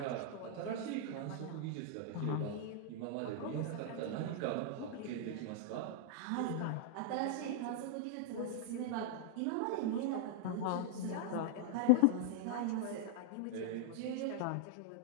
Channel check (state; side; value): different; both; correlation -0.01